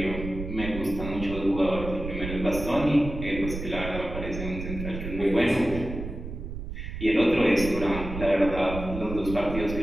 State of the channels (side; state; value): right; noise; rumble, 8 dB below the sound